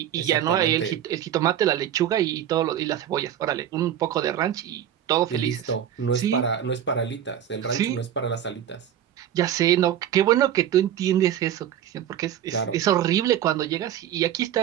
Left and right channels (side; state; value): left; quieter; 10.3 dB